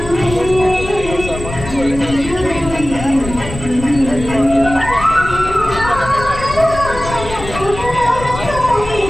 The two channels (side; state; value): left; noise; rumble, 10 dB below the sound